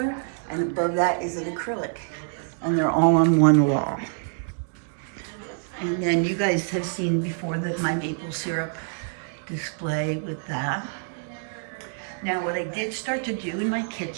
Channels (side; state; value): left; silent; digital silence